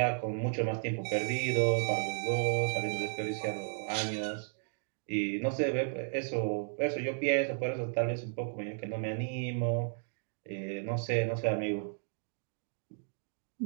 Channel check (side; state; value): left; silent; digital silence